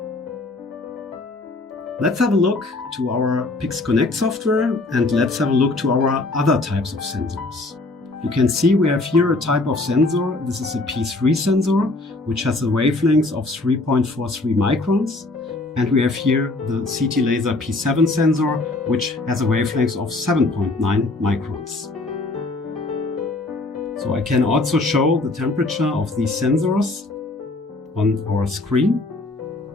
Let's have a look to our PixConnect software, and let's have a look to our other types of sensors. You can see we have here a type of sensor. This is a P3 sensor, which has a wavelength of 3.43 microns. And we have here the CT laser P7 sensor, which has a wavelength of 7.9 microns. So I can also show the temperature of these sensors on our screen.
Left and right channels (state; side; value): quieter; right; 3.1 dB